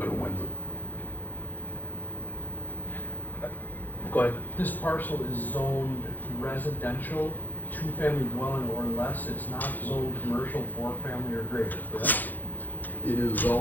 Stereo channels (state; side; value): late; right; 0.085 ms